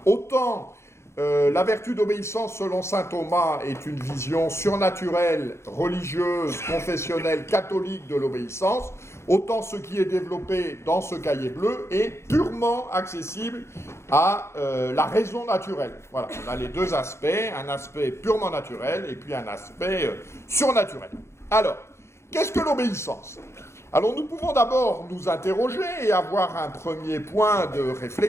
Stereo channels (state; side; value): late; right; 0.13 ms